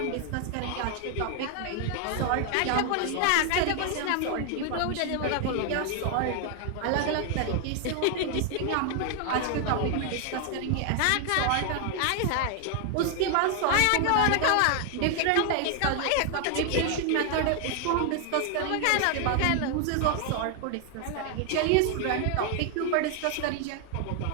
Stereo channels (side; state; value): both; different; correlation 0.00